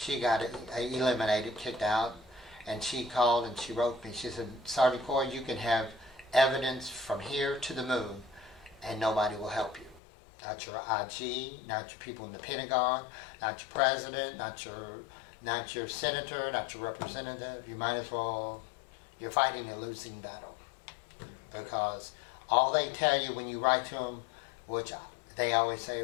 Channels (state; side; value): drops out; right; at 10.0 s